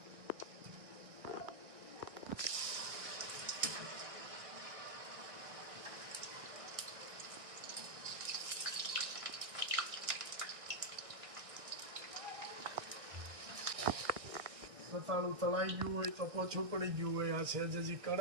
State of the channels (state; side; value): late; left; 1.6 ms